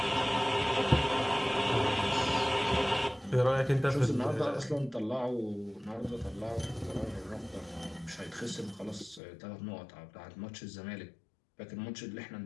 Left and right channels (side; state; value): right; drops out; at 9.2 s